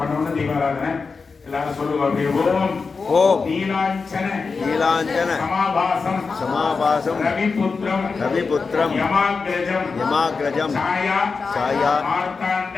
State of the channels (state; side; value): quieter; right; 4.7 dB